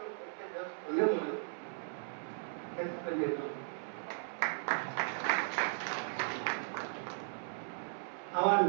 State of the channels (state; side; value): silent; left; 53 dB below the other